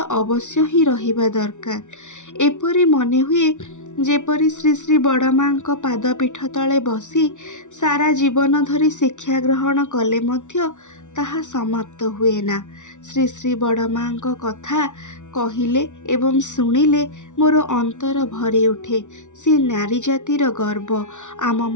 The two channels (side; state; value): right; late; 0.85 ms